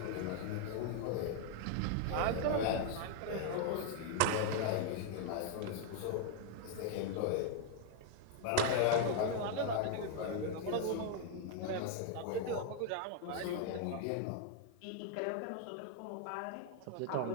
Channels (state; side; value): different; both; correlation 0.00